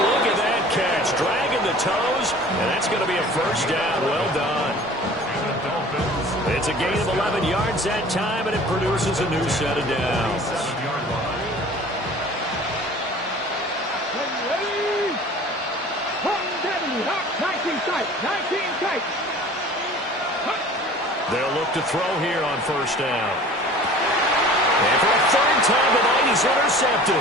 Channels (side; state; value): both; normal; correlation 0.45